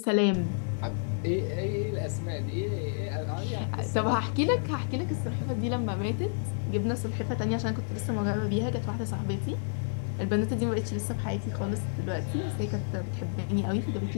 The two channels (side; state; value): right; silent; digital silence